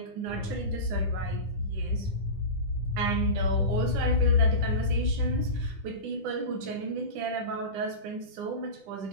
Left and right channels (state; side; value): late; left; 10 ms